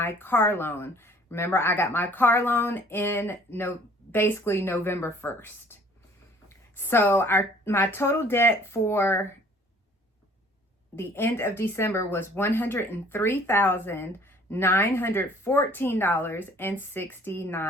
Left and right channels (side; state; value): both; normal; correlation 0.55